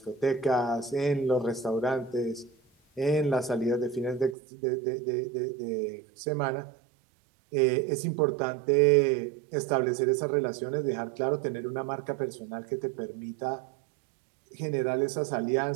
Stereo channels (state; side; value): drops out; left; at 4.4 s